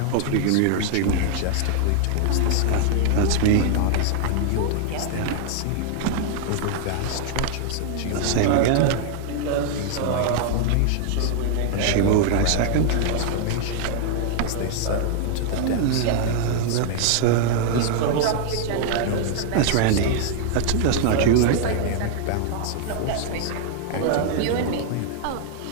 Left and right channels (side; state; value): both; different; correlation 0.00